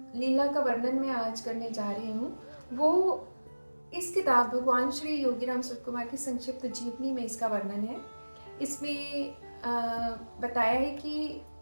लीला का वर्णन मैं आज करने जा रही हूँ वो इस किताब भगवान श्री योगीराम सुरतकुमार की संक्षिप्त जीवनी में इसका वर्णन है। इसमें बताया है कि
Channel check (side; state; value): both; inverted; correlation -1.00